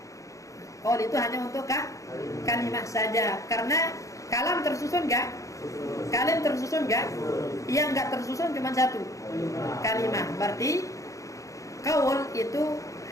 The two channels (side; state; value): right; late; 0.16 ms